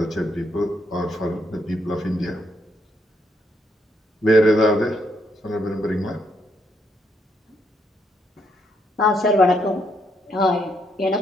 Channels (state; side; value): normal; both; correlation 0.75